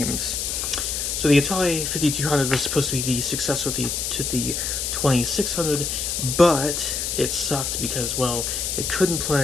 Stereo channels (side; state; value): left; noise; hiss, 1 dB below the sound